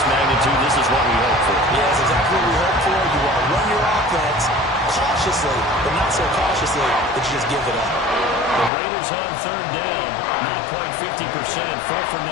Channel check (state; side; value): drops out; right; at 8.7 s